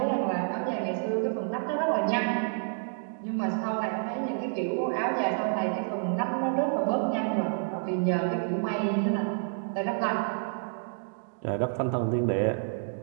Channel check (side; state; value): left; silent; digital silence